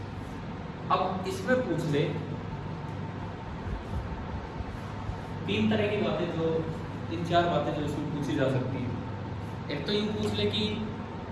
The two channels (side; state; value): both; identical; correlation 1.00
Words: अब इसमें पूछ ले तीन तरह की बातें, जो तीन चार बातें जो इसमें पूछी जा सकती है। एक तो यूँ पूछ ले कि